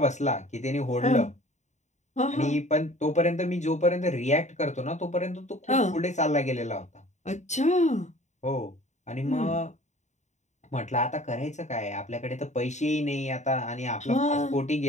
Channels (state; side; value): late; right; 0.34 ms